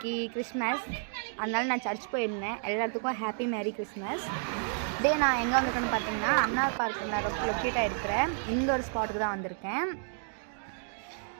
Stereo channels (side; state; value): left; silent; 57 dB below the other